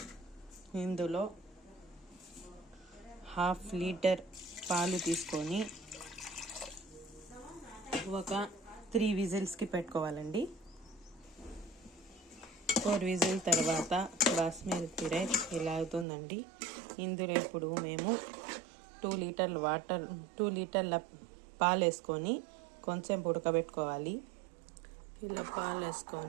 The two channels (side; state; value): left; drops out; at 16.1 s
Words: ఇందులో 1/2 లీటర్ పాలు తీసుకొని ఒక 3 విజిల్స్కి పెట్టుకోవాలండి. 4 విజిల్ తర్వాత బాస్మతి రైస్ ఇలా అవుతుందండి. ఇందులో ఇప్పుడు మేము 2 లీటర్ల పాలు వేసుకొని కొంచెం ఉడకబెట్టుకోవాలి. ఇలా పాలు